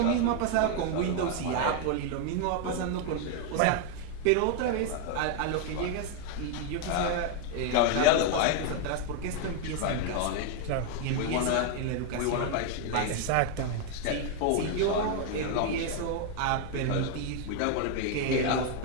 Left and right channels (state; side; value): different; both; correlation 0.00